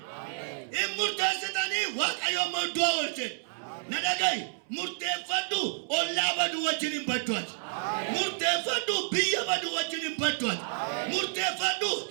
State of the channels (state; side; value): silent; left; 58 dB below the other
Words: Hin murteessitanii waaqayyo immoo du'a oolche. Na dhaga'i murteeffadhu ollaa badu wajjin hin badduati. Murteeffadhu biyya badu wajjin hin badduati. Murteeffadhu